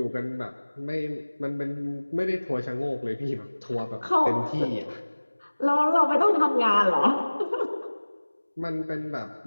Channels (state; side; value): inverted; both; correlation -1.00